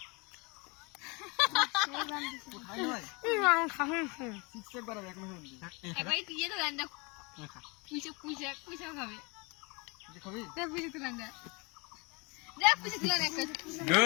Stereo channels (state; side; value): quieter; right; 28.9 dB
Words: এবার তুই তো রান্না পুষে পুষে পুষে খাবে পুষে তুলে দেখ পুষে তুলে